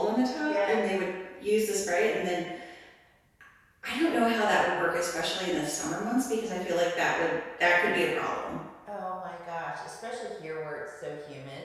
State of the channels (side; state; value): both; identical; correlation 1.00